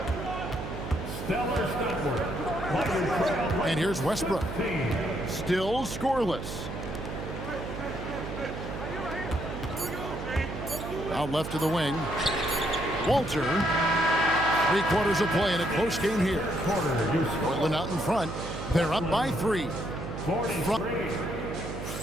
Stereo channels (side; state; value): right; noise; hum, 7 dB below the sound